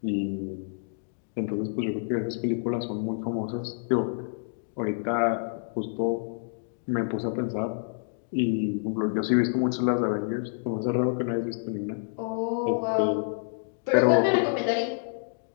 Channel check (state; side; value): silent; right; digital silence